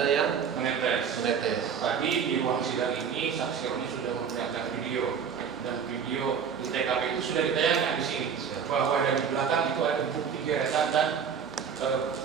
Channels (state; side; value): quieter; left; 7.0 dB